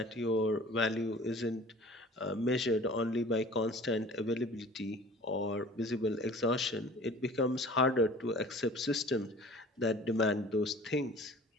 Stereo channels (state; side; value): normal; both; correlation 0.45